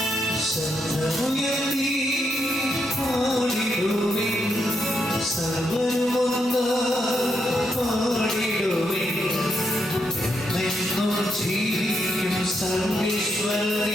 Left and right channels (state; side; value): normal; both; correlation 0.80